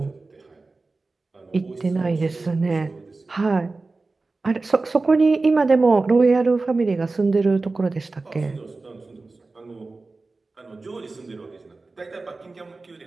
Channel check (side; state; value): left; quieter; 3.6 dB